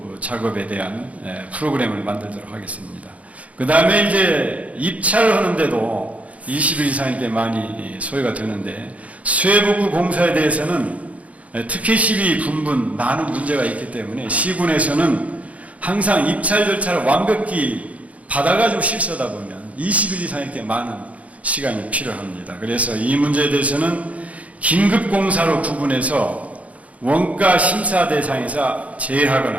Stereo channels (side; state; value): left; late; 0.067 ms